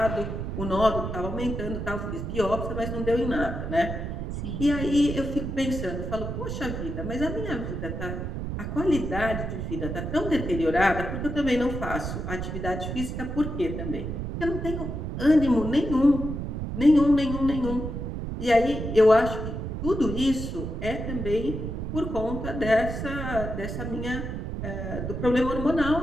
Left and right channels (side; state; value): right; noise; rumble, 4 dB below the sound